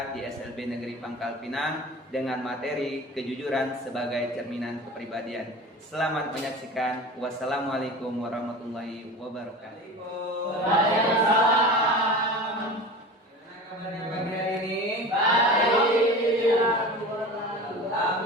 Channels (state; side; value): normal; both; correlation 0.34